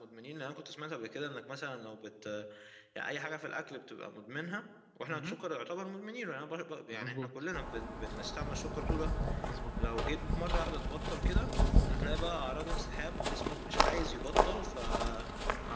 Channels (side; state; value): both; identical; correlation 1.00